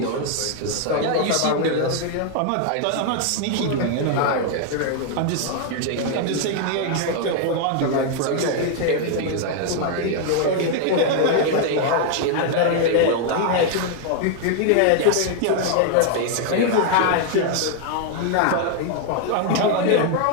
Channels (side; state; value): both; different; correlation 0.00